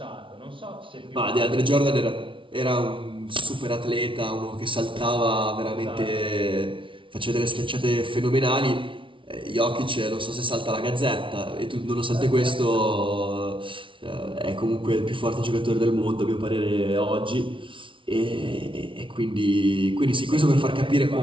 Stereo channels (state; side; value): late; left; 0.25 ms